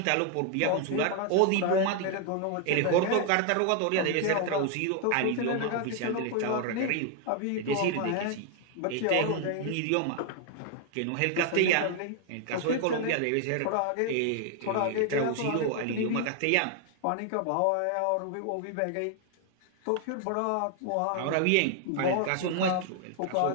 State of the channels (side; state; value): both; different; correlation 0.00